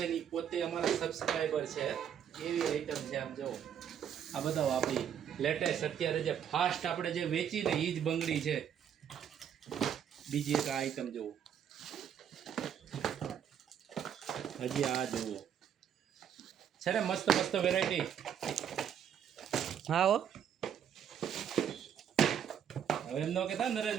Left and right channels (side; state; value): left; quieter; 8.9 dB